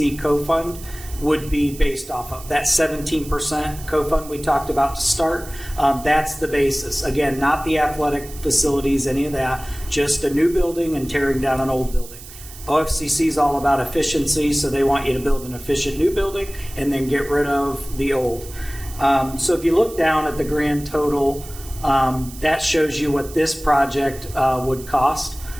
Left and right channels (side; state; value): right; noise; hiss, 16 dB below the sound